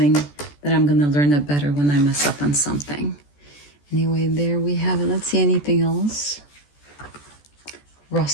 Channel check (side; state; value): right; late; 14 ms